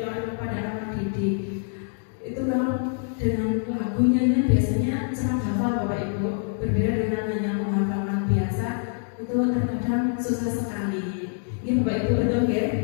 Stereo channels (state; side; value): silent; right; 58 dB below the other